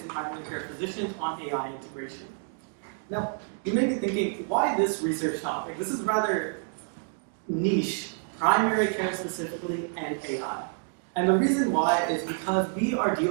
primary care physicians on AI integration. Now, you may be thinking, why this research topic? This is rather niche, primary care specifically and AI. And the reason why is because we are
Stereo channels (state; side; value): silent; left; 59 dB below the other